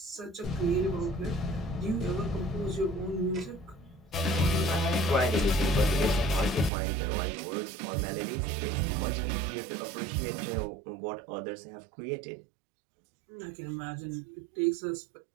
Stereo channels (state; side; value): drops out; left; at 6.7 s